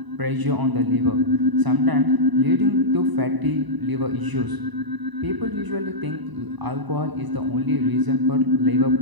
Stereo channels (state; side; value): late; left; 1.0 ms